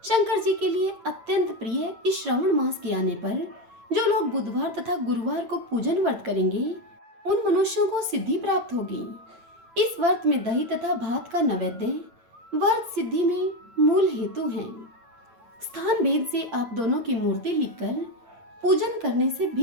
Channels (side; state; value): left; late; 9.0 ms